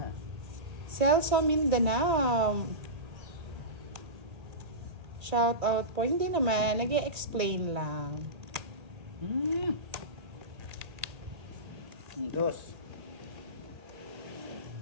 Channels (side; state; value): left; late; 1.8 ms